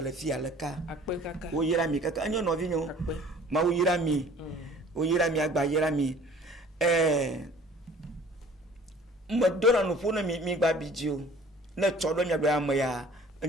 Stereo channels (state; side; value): normal; both; correlation 0.50